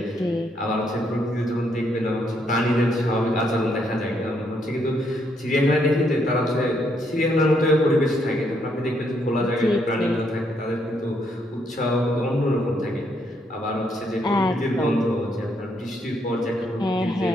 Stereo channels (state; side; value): normal; both; correlation 0.74